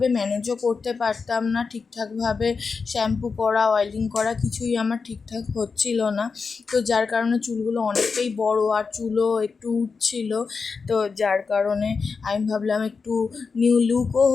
ম্যানেজও করতে পারতাম না, ঠিকঠাকভাবে শ্যাম্পু করা, অয়েলিং করা কিছুই আমার ঠিকঠাক হচ্ছিল না। তো যার কারণে চুলগুলো অনেকটাই বড় আর চুলও একটু উঠছিল। তো যার কারণে আমি ভাবলাম একটু নিউ লুকও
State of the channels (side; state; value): right; quieter; 5.0 dB